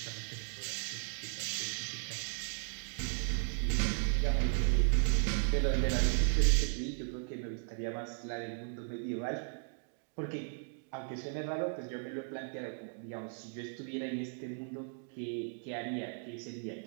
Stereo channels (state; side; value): silent; left; digital silence